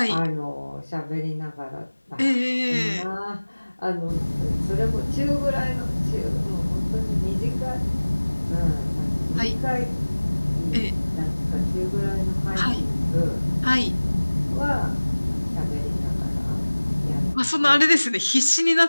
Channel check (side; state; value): both; inverted; correlation -1.00